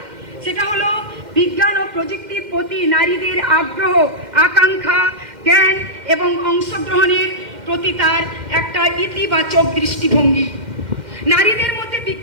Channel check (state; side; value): late; left; 2.1 ms